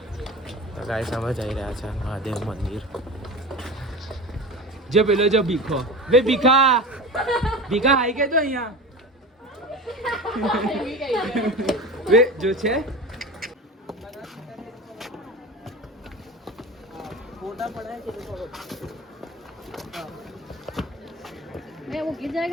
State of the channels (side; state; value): both; normal; correlation 0.31